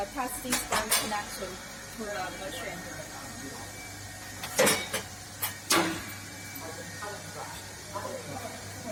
testing stand connection to the machine.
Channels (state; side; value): identical; both; correlation 1.00